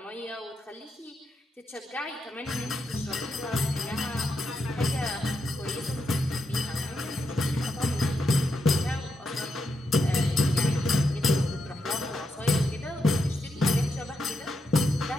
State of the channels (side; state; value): both; normal; correlation 0.84